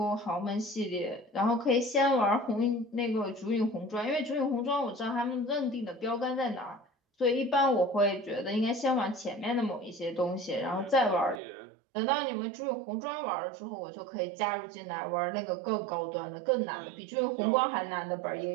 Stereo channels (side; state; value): left; drops out; at 11.4 s